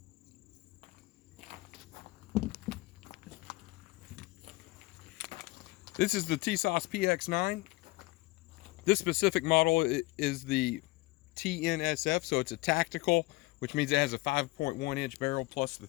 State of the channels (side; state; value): right; quieter; 21.3 dB